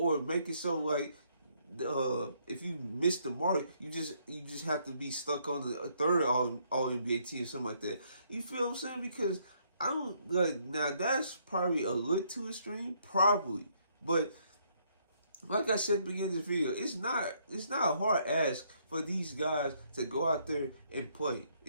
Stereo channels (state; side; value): inverted; both; correlation -0.70